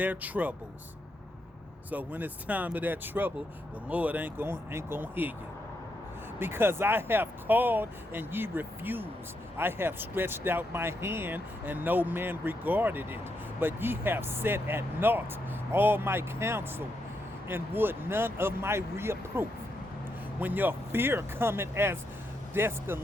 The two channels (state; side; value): normal; both; correlation 0.81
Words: troubles. So when it's time of that trouble, the Lord ain't gonna hear you. Because I have called and ye refused. I have stretched out my hand and no man regarded it. But ye have set at naught all my counsel and would none of my reproof. When your fear cometh as